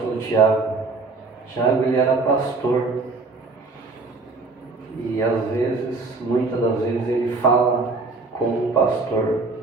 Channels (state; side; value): quieter; left; 3.8 dB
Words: Tiago. Tiago, ele era pastor. E às vezes, muitas das vezes, ele fala como pastor.